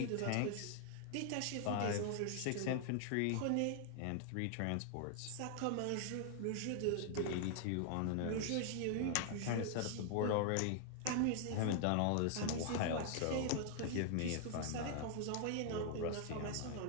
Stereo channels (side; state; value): both; different; correlation 0.00